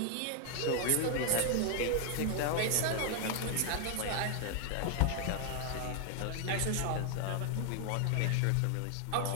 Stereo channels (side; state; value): both; different; correlation 0.00